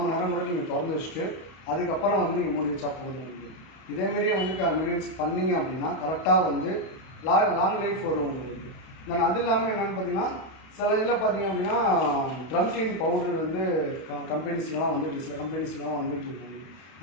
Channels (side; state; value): right; late; 31 ms